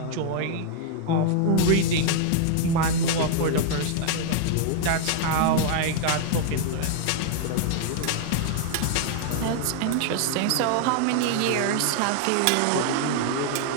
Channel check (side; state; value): both; different; correlation 0.00